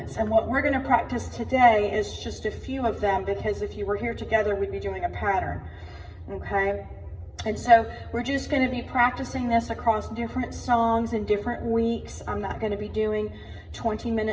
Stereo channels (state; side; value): identical; both; correlation 1.00